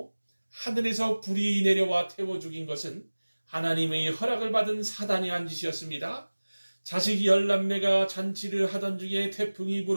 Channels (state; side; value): inverted; both; correlation -1.00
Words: 하늘에서 불이 내려와 태워 죽인 것은 하나님의 허락을 받은 사단이 한 짓이었습니다. 자식 10남매가 잔치를 하던 중에 태풍이